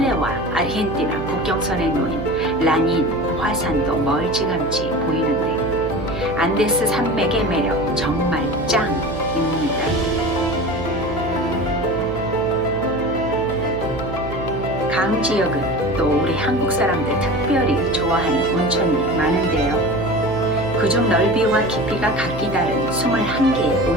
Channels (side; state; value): right; noise; hum, 9 dB below the sound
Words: 아르헨티나 국경선에 놓인 라닌 화산도 멀찌감치 보이는데 안데스 산맥의 매력 정말 짱입니다. 강 지역은 또 우리 한국 사람들 특별히 좋아하는 온천이 많은데요. 그중 넓이와 깊이가 각기 다른 21개의